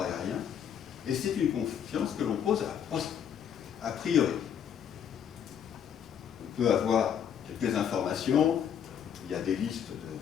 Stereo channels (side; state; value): right; quieter; 8.6 dB